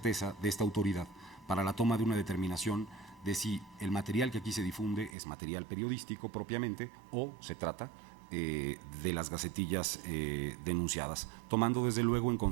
de esta autoridad para la toma de una determinación de si el material que aquí se difunde es material periodístico propiamente o se trata de las gacetillas denunciadas, tomando desde luego en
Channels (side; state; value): left; drops out; at 5.2 s